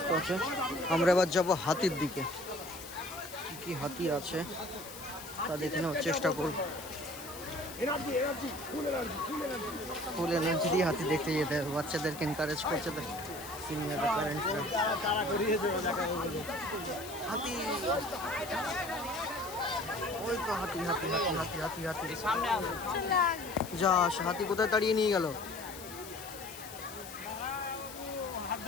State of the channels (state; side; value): noise; left; hiss, 13 dB below the sound